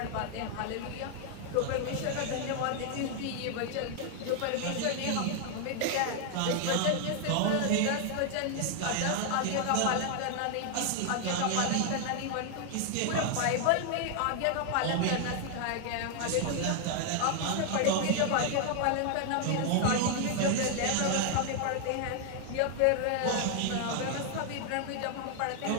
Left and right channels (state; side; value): different; both; correlation 0.00